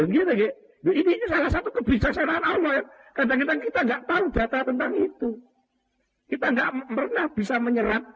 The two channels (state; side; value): identical; both; correlation 1.00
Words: gitu, ini salah satu kebijaksanaan Allah ya. Kadang-kadang kita nggak tahu data tentang itu. Kita nggak pernah bisa